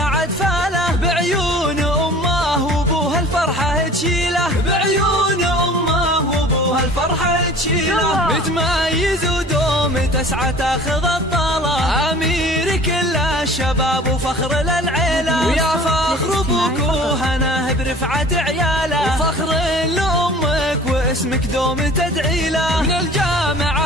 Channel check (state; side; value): normal; both; correlation 0.46